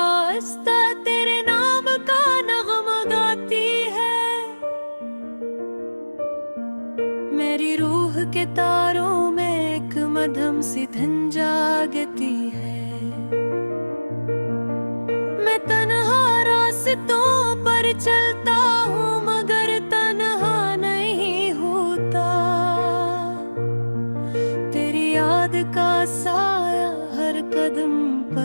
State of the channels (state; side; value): inverted; both; correlation -1.00